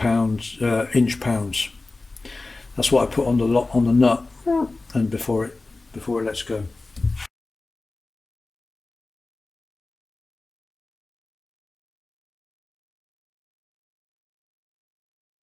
inch-pounds. That's what I put on the nut, and before it lets go.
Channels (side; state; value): right; quieter; 3.3 dB